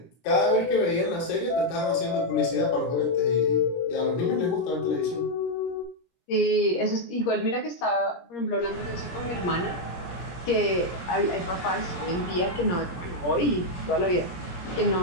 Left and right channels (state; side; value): late; right; 17 ms